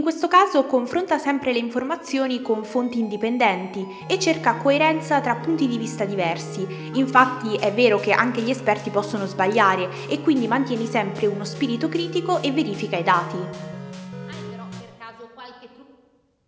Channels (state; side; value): identical; both; correlation 1.00